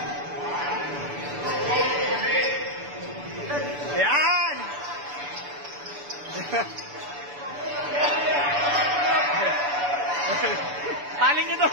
Ayan! Paling nyo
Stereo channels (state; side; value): late; left; 6.9 ms